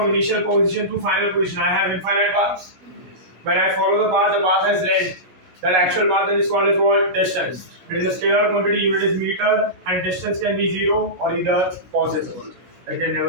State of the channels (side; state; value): left; late; 16 ms